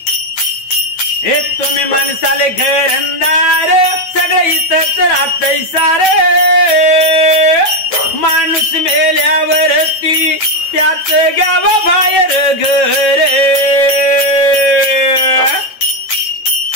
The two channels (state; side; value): late; right; 9.2 ms